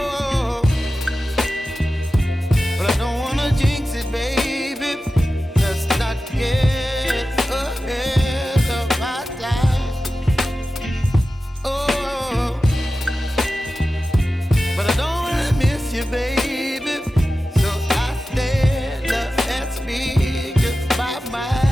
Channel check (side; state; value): both; normal; correlation 0.94